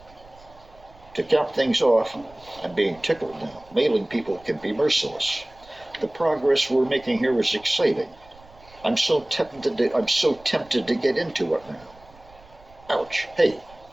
To cap things off, I'm being tickled now. Mailing people can be merciless. The progress we're making here is exciting. I'm so tempted to get into it now. Ouch. Hey,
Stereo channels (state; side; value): noise; right; rumble, 25 dB below the sound